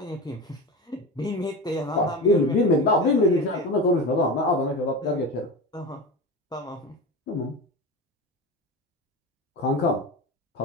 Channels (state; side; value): normal; both; correlation 0.26